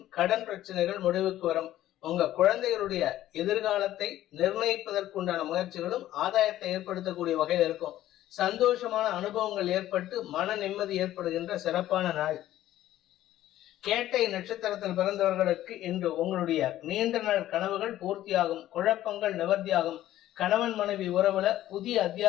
கடன் பிரச்சனைகள் முடிவுக்கு வரும். உங்க குழந்தைகளுடைய எதிர்காலத்தை நிர்ணயிப்பதற்குண்டான முயற்சிகளும் ஆதாயத்தை ஏற்படுத்தக்கூடிய வகையில் இருக்கும். சந்தோஷமான அனுபவங்கள் ஏற்பட்டு மன நிம்மதி ஏற்படுகின்ற சிறப்பான நாள். கேட்டை நட்சத்திரத்தில் பிறந்தவர்களுக்கு இன்று உங்களுடைய நீண்ட நாள் கனவுகள் பூர்த்தியாகும். குழப்பங்கள் நிவர்த்தியாகும். கணவன் மனைவி உறவுல புதிய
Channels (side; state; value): right; quieter; 13.7 dB